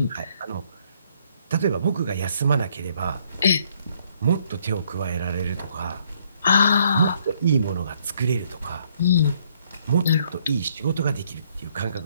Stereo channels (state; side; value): inverted; both; correlation -0.67